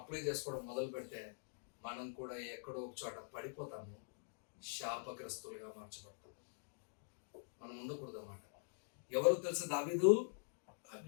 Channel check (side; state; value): right; silent; digital silence